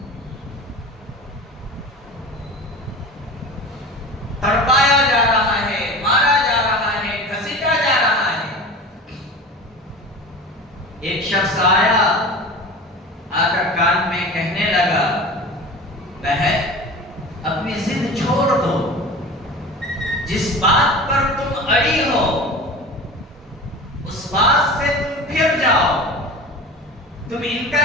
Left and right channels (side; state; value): both; normal; correlation 0.35